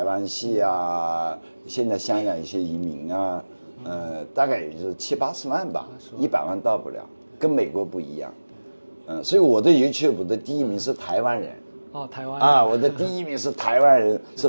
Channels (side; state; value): both; inverted; correlation -1.00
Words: 湾系啊，现在香港一些移民啊，大概也就是70、80万吧，100万到不了，跟美国不一样。所以我的 YouTube 的第1名是台湾人。哦，台湾啊，我的第1名是台湾人，是